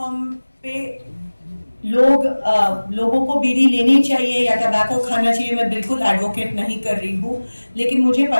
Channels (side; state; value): both; inverted; correlation -1.00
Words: पे लोगों को बीड़ी लेनी चाहिए या टबैको खाना चाहिए, मैं बिल्कुल एडवोकेट नहीं कर रही हूँ, लेकिन मुझे